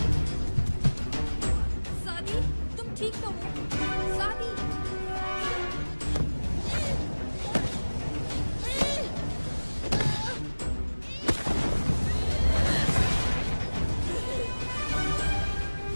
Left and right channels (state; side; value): inverted; both; correlation -1.00